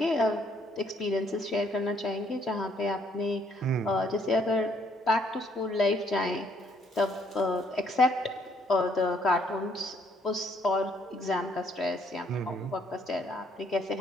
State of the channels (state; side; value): normal; both; correlation 0.67